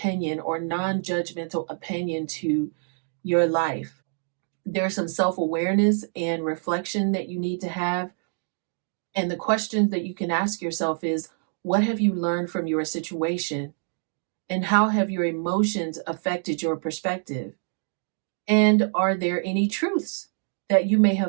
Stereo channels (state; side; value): silent; left; 61 dB below the other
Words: or non-judgmental opinion to your life. There's some self-awareness and reflection that you need to have. And the question that you can ask yourself is, what have you learned from your situation? And how have your emotions affected your perspective? And are there any truths that you may